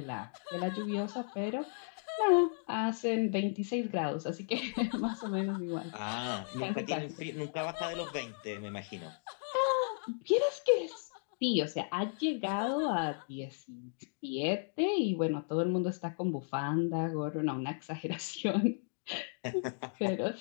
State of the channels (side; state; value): right; silent; digital silence